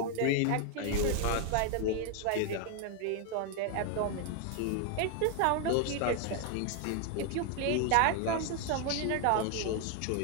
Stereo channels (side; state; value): both; different; correlation 0.01